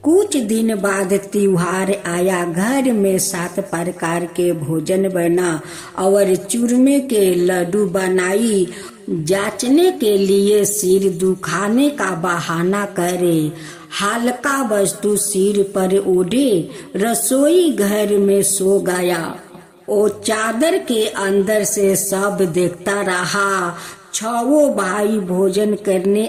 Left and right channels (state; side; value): identical; both; correlation 1.00